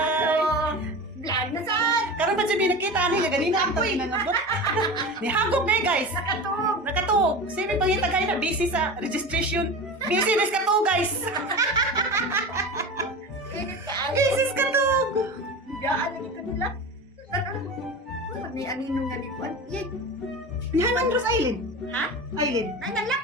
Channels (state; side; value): normal; both; correlation 0.30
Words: Vlog na saan? Karon pa siya binakita nila. Ganina ang tayo nanabot. Nihagop na guys. Nakatog. Nakatog. Sabi pangita kayo na busy sa registration. Busy res ka to guys. Init ka ay. Busy ka to. Gaan lagi ka nila. May aninong nga likuan. Yay. Nihan Andros Island. Ha? Island. Ay,